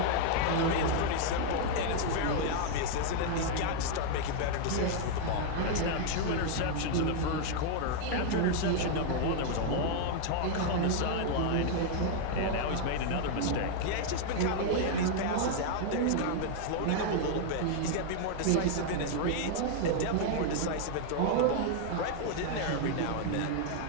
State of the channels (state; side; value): different; both; correlation 0.00